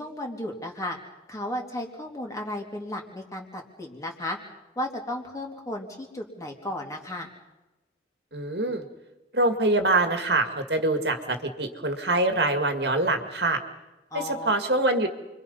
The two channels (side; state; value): both; normal; correlation 0.02